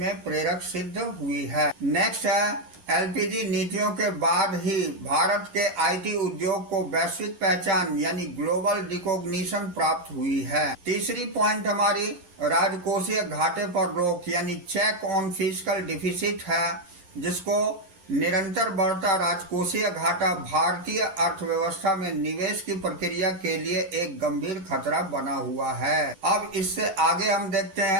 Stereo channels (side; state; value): left; late; 11 ms